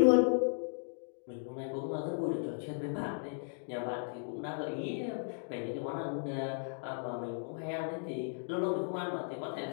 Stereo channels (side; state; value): right; silent; digital silence